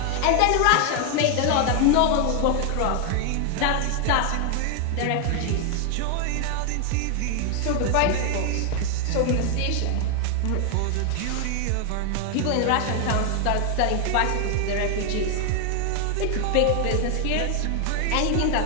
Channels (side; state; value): both; different; correlation 0.00